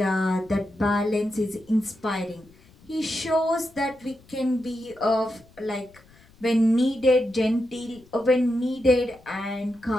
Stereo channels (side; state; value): left; noise; rumble, 27 dB below the sound